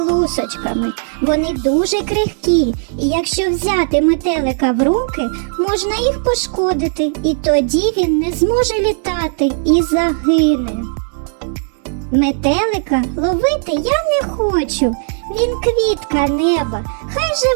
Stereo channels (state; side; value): silent; left; digital silence